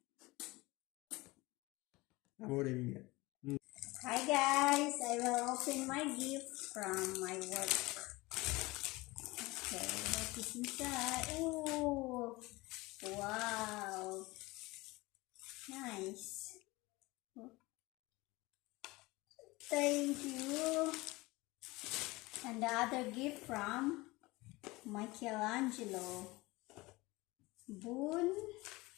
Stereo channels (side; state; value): right; quieter; 21.8 dB